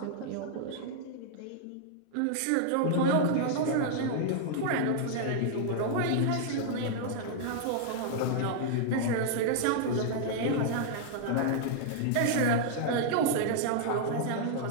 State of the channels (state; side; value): different; both; correlation -0.01